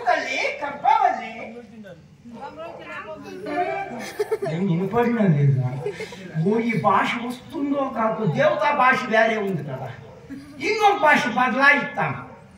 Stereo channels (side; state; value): both; identical; correlation 1.00